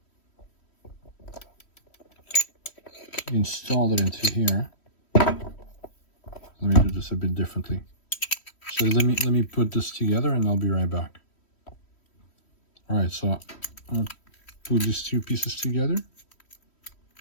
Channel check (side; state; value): right; late; 3.1 ms